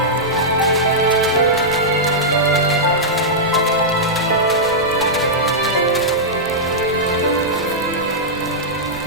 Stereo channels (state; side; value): noise; right; rumble, 19 dB below the sound